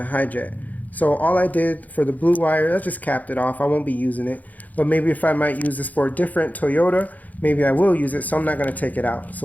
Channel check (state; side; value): late; right; 0.079 ms